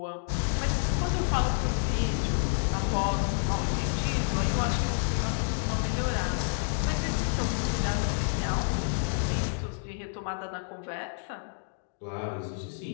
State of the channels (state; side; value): silent; right; digital silence